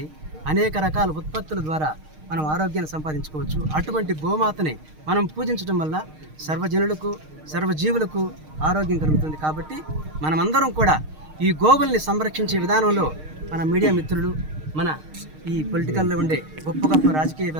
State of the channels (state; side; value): late; left; 6.5 ms